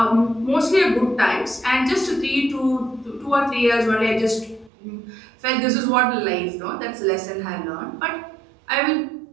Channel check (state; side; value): drops out; left; at 4.7 s